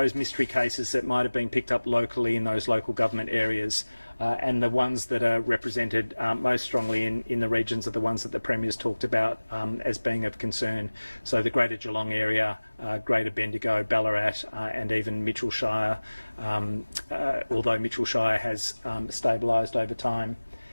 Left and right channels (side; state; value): both; inverted; correlation -1.00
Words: mystery cases that might have been picked up locally in those local government areas. And the ones that are represented most strongly in the regions are the ones that the Premier's talked about as being of concern. So the Greater Geelong area, Greater Bendigo, Ballarat, and even Mitchell Shire, although Mitchell Shire has stabilised over time.